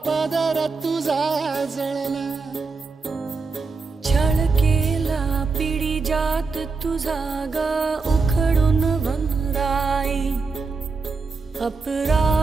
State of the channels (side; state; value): left; quieter; 4.4 dB